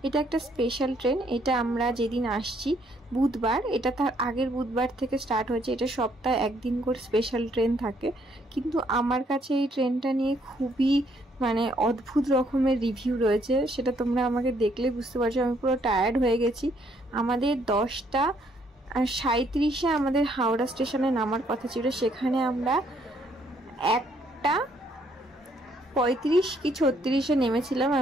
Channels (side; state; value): both; normal; correlation 0.68